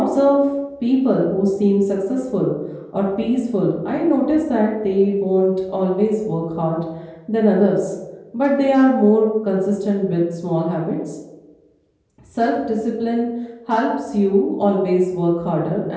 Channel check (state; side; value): identical; both; correlation 1.00